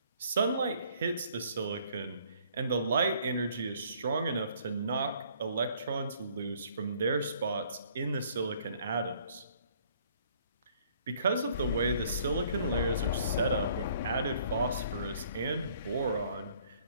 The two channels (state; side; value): inverted; both; correlation -0.60